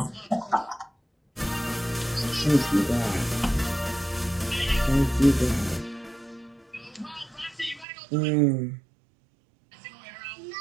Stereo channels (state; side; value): drops out; left; at 7.9 s